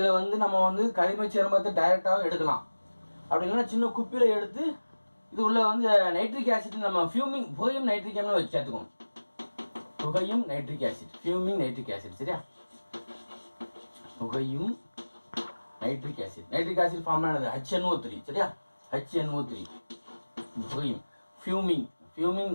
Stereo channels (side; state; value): both; inverted; correlation -1.00